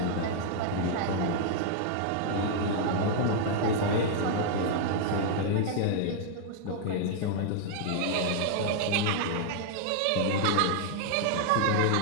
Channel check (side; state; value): both; different; correlation -0.01